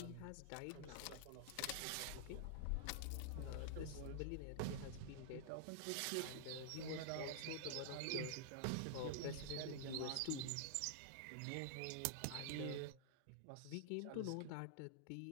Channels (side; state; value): both; different; correlation -0.01